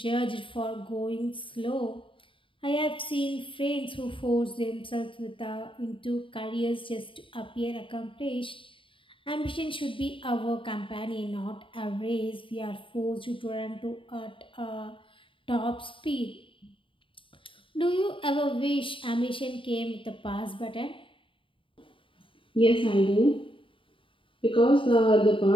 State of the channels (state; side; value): late; right; 0.25 ms